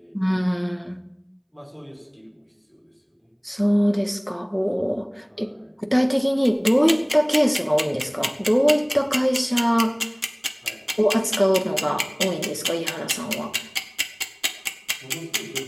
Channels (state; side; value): identical; both; correlation 1.00